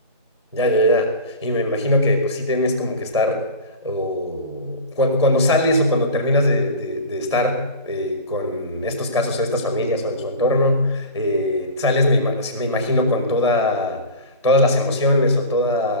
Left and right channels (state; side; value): inverted; both; correlation -0.33